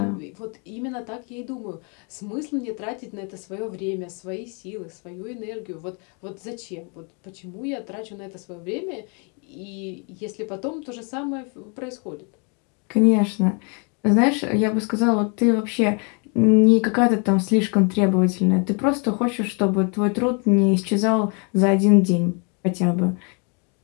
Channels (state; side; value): quieter; right; 36.0 dB